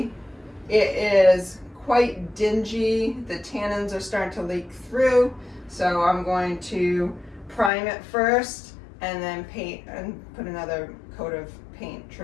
it is quite dingy. The tannins are starting to leak through. So I'm going to prime it first and then paint and put another coat of paint,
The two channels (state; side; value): drops out; right; at 7.7 s